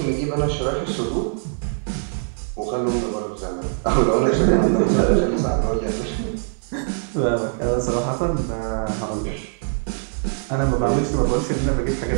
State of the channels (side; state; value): left; silent; digital silence